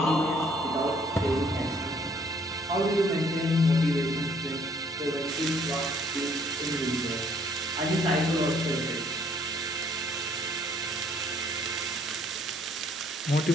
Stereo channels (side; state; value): both; normal; correlation 0.63